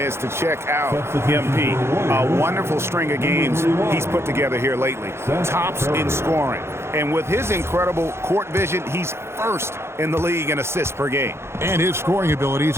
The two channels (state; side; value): late; left; 0.12 ms